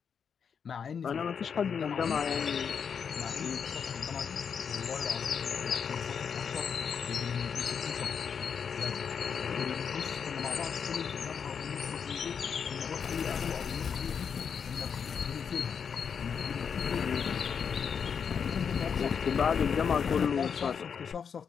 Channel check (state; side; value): quieter; right; 6.8 dB